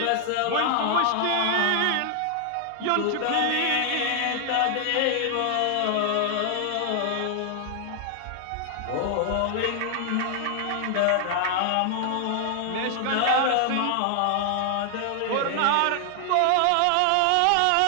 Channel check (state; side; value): different; both; correlation 0.00